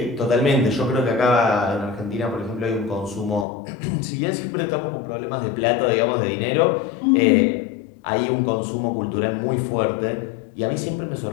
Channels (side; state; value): right; drops out; at 3.5 s